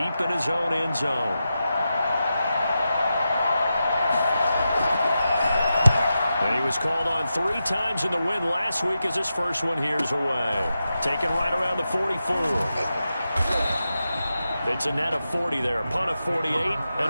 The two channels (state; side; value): inverted; both; correlation -0.90